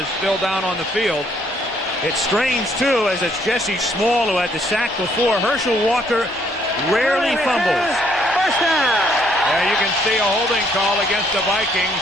still down on the field. It's strange, too, as it's Jesse Small who had the sack before. Herschel Walker rarely fumbles. First down. Yeah, you can see a holding call against the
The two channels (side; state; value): both; normal; correlation 0.67